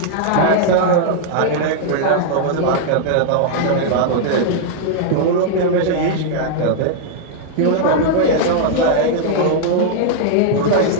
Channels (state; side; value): different; both; correlation -0.01